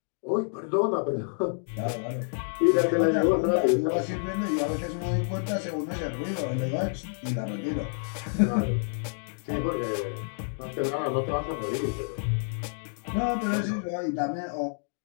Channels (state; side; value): silent; right; digital silence